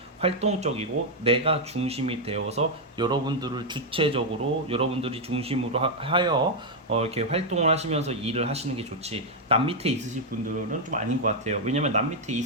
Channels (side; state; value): both; normal; correlation 0.00